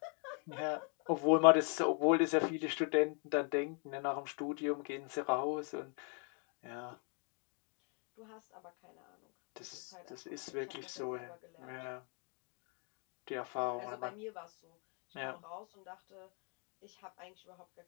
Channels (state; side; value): quieter; right; 39.0 dB